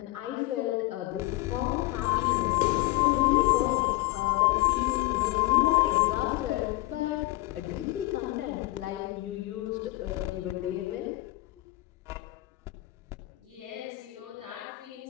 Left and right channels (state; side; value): quieter; right; 19.4 dB